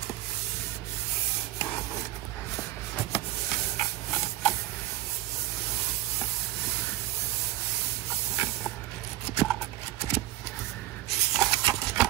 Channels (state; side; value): quieter; left; 15.3 dB